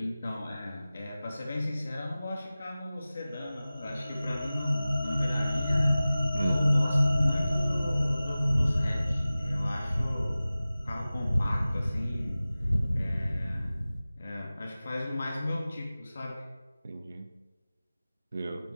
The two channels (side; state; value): both; inverted; correlation -0.97